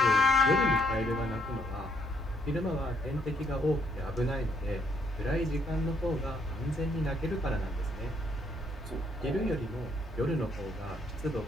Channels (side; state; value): both; normal; correlation 0.71